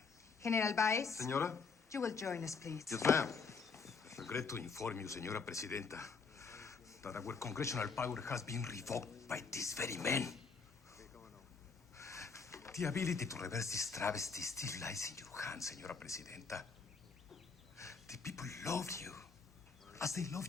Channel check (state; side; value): quieter; right; 5.0 dB